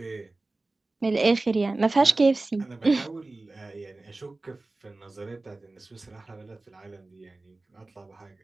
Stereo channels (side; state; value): left; quieter; 3.1 dB